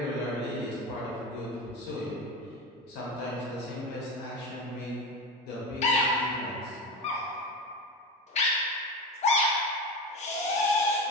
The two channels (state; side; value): normal; both; correlation 0.24